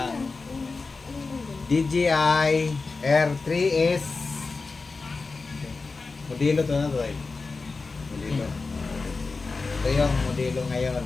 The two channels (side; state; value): right; quieter; 4.1 dB